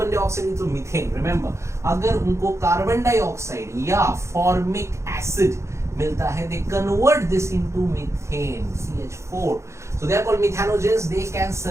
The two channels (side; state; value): left; late; 0.14 ms